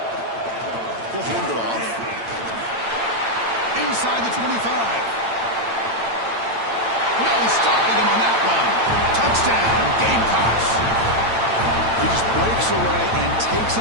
He'll hand it off. Inside the 25. No stopping him on that run. Touchdown, Gamecocks. He just breaks away and takes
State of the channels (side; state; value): left; late; 8.9 ms